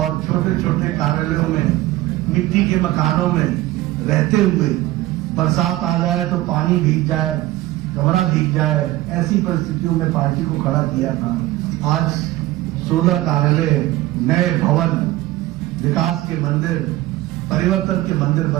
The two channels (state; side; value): quieter; left; 16.8 dB